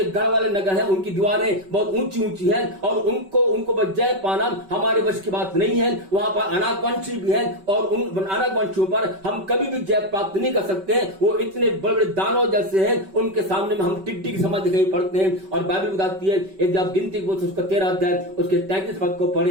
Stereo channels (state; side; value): late; left; 5.2 ms